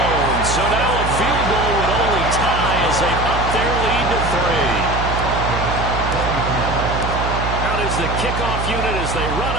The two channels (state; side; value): noise; right; hum, 3 dB below the sound